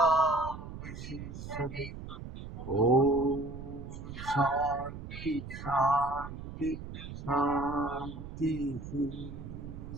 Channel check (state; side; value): noise; right; rumble, 10 dB below the sound